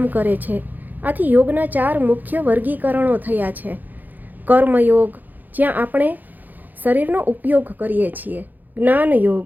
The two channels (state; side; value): late; left; 0.085 ms